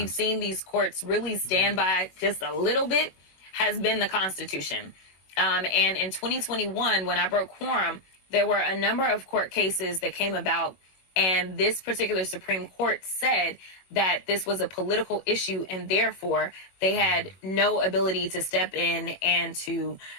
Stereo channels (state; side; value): late; right; 21 ms